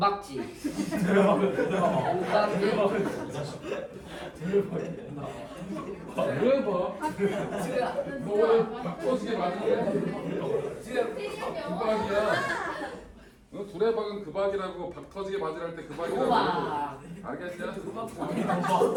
대박. 너 바꿔지게 맞는 그박이야. 너 두레박은 그박이라고 박 터지게 맞으랄 때 그박이라고. 우와. 알겠냐?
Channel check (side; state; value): both; identical; correlation 1.00